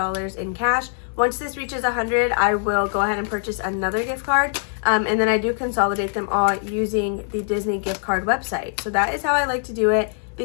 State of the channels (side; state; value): right; silent; 57 dB below the other